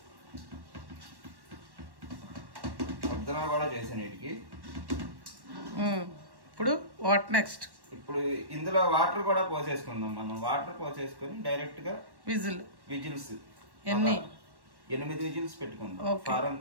ముద్దన కూడా చేసాను వీటికి. ఇప్పుడు వాట్ నెక్స్ట్? ఇప్పుడు ఇందులో వాటర్ కూడా పోసేసుకుందాం. మనం వాటర్ పోసేసుకొని డైరెక్ట్ గా విజిల్స్ 8 విజిల్స్ పెట్టుకుందాం, ఫారం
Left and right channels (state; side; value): late; left; 1.1 ms